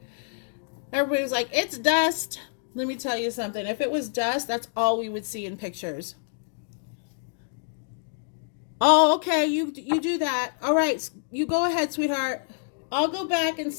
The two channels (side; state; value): right; silent; digital silence